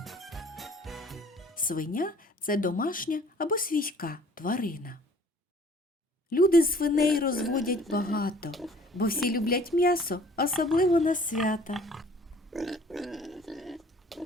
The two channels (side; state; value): both; normal; correlation 0.54